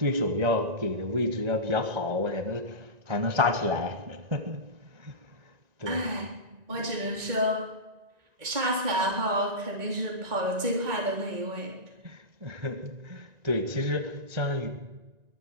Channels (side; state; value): left; late; 1.9 ms